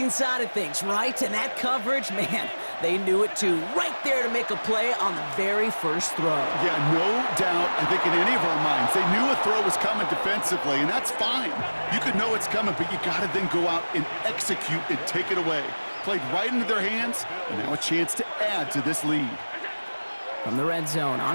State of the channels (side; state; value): both; inverted; correlation -1.00